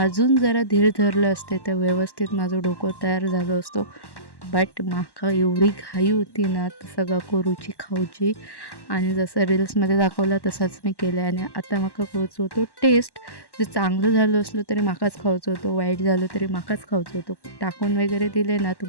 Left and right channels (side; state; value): right; late; 1.1 ms